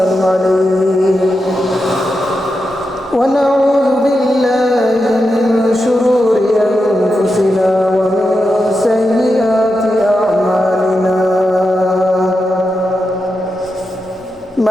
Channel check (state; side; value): normal; both; correlation 0.88